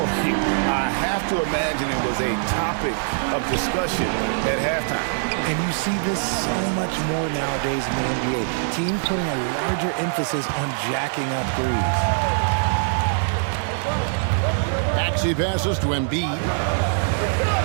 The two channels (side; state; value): left; silent; 64 dB below the other